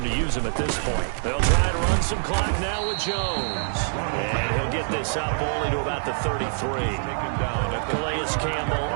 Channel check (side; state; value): left; silent; digital silence